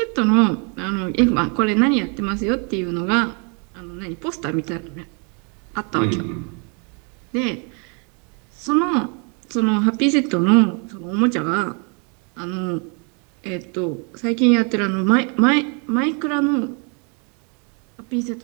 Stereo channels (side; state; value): left; quieter; 36.2 dB